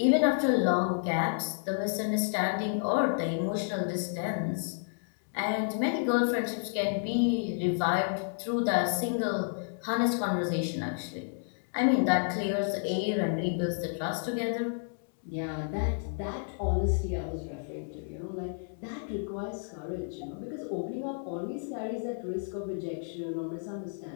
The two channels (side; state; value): right; silent; digital silence